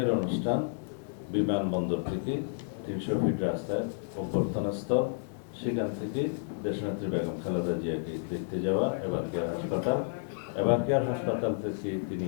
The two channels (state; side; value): silent; right; 57 dB below the other